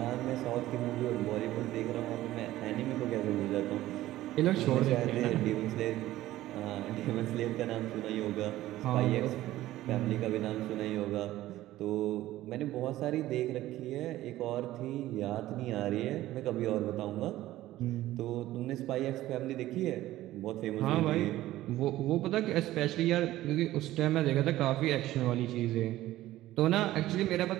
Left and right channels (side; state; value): left; quieter; 15.3 dB